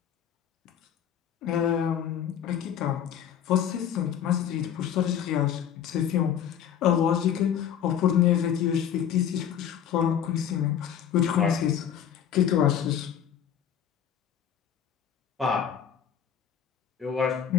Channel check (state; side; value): quieter; right; 9.1 dB